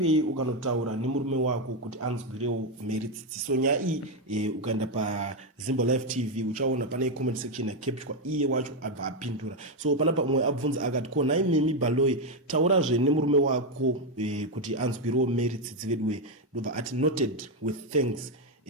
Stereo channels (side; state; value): both; normal; correlation 0.05